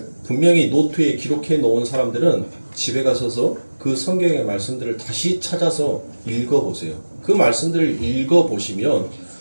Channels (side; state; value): both; inverted; correlation -1.00